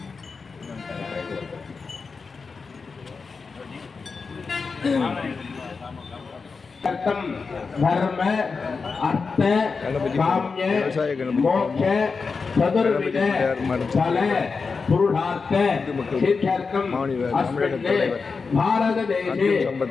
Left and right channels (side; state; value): right; quieter; 4.8 dB